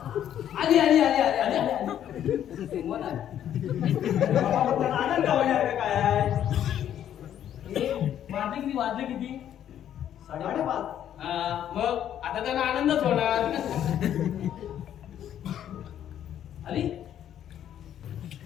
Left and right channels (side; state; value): right; quieter; 10.4 dB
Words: आली आली आली आली आली आली. मन आहे. बाबा, आनंद होण्यासारखं काय आहे? वाजले किती? वाजले किती? 5:30. मग आता त्यांना आनंदच होणार. आली